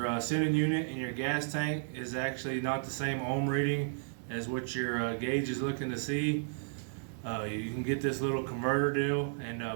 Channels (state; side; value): silent; left; digital silence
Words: sending unit in your gas tank is actually not the same ohm reading as what your gauge is looking to see, you can get this little converter deal